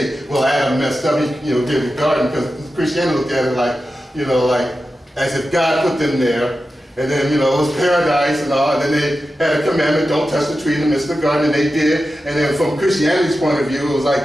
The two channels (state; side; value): normal; both; correlation 0.92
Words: well, Adam messed up, he did the garden, because Christianity looked at it like as if God put them there, and then, it was paradise and all, and then they had a commandment, don't touch the tree in the midst of the garden, and they did. And then from Christianity's point of view, it was